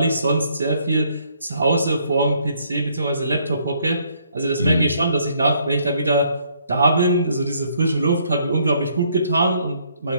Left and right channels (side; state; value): both; inverted; correlation -0.67